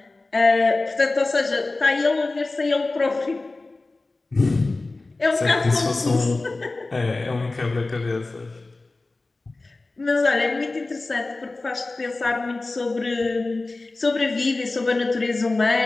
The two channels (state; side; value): quieter; right; 3.3 dB